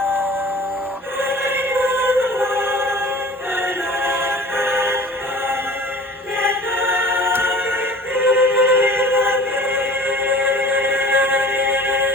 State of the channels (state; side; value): normal; both; correlation 0.43